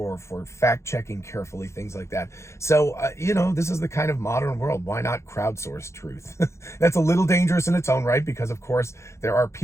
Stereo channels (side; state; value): right; late; 0.14 ms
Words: fact checking carefully, things like that. So this is the kind of modern world. Why not crowdsource truth? That's a little dangerous in its own right, because of course there are